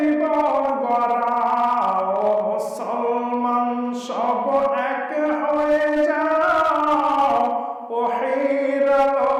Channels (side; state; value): both; identical; correlation 1.00